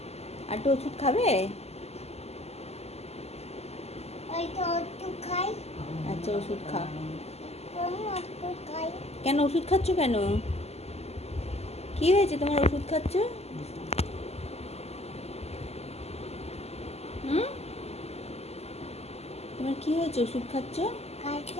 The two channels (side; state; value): right; late; 0.30 ms